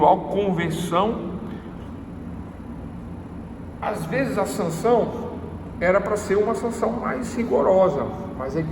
conversão. Às vezes a sanção era para ser uma sanção mais rigorosa, mas aí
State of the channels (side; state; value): both; identical; correlation 1.00